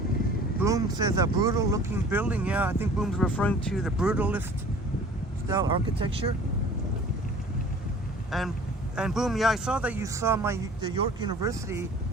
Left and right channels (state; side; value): normal; both; correlation 0.47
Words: Boom says a brutal looking building. Yeah, I think Boom's referring to the brutalist style architecture. And Boom, yeah, I saw that you saw the York University